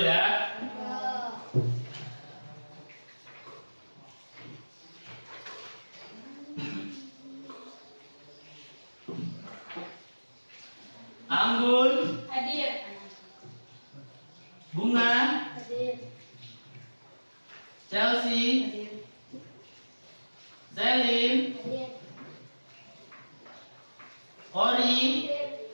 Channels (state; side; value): inverted; both; correlation -1.00